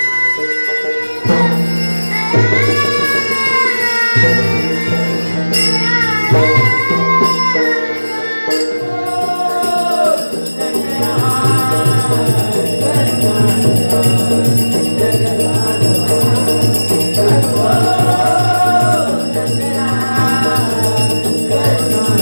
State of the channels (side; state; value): both; inverted; correlation -1.00